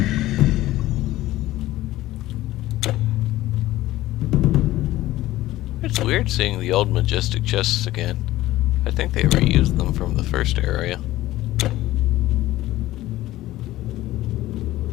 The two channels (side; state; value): right; quieter; 16.1 dB